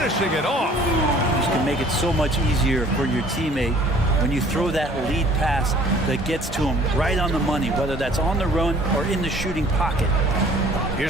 it off. This can make it so much easier for your teammate when you throw that lead pass that gets to him right on the money, whether that's on the run or in the shooting pocket.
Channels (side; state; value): both; normal; correlation 0.53